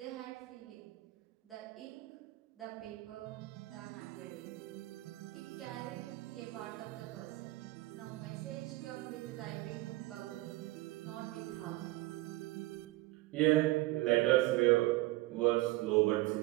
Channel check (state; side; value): quieter; left; 19.3 dB